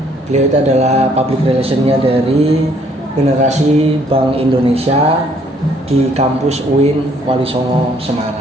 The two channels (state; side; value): normal; both; correlation 0.64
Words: itu adalah public relationnya dari generasi Bank Indonesia di kampus UIN Wali Songo